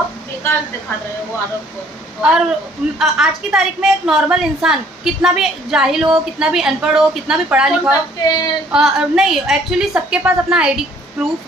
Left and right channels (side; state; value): both; normal; correlation 0.60